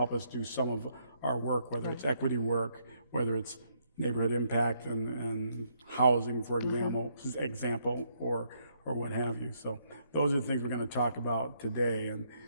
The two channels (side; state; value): both; inverted; correlation -0.73